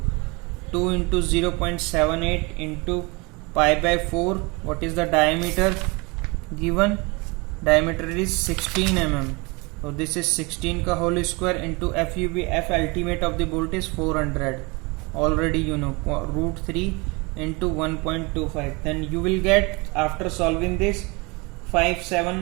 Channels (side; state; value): left; quieter; 27.3 dB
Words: 2 into 0.78 into pi by 4. What is the diameter given? diameter is 16 mm. So this is 16 ka whole square into FUB, F ultimate of the bolt is 400. Already you know, root 3 into 1.25. Then you will get, after solving this,